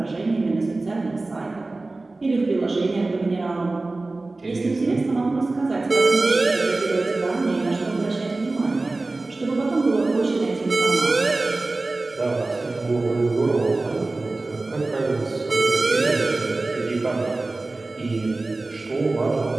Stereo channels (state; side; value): quieter; left; 3.2 dB